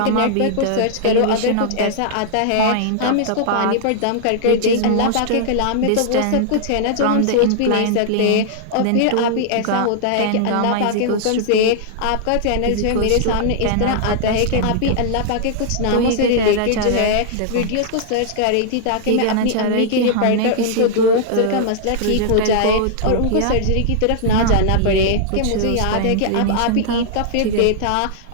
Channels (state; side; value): different; both; correlation -0.01